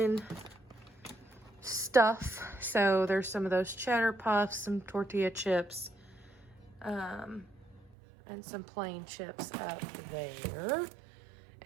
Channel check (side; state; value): left; drops out; at 7.9 s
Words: stuff. So there's some of those cheddar puffs, some tortilla chips, and some plain chips up there.